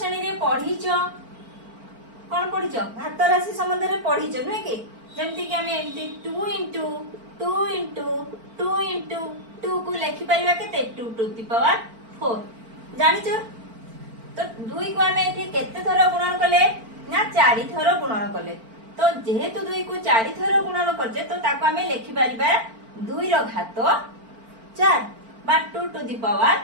रे पढ़ीच कौन पढ़ीच घात राशि संबंध रे पढ़ीच नुहे कि जेमती कि हमें एमती 2 इंटू 2 इंटू 2 इंटू 2 को लिखि परिबा केते 2 टू द पावर 4 जानिचो। तो 2 को हमें एठी केते थर गुणन कले ना 4 थर गुणन कले। तो जेहेतु 2 को 4 थर गुणन करजे तो ताको हमें लिखि परिबा 2 रो घात 4 बा 2 टू द पावर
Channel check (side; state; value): left; late; 4.4 ms